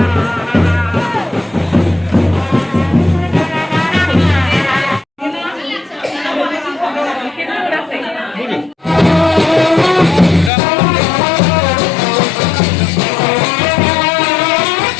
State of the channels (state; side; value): drops out; right; at 10.5 s